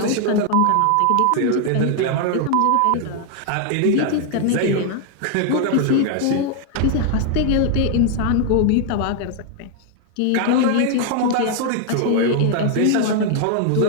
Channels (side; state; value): both; different; correlation 0.00